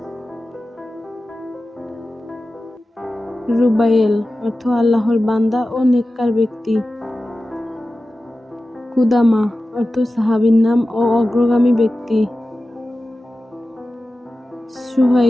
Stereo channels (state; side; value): normal; both; correlation 0.95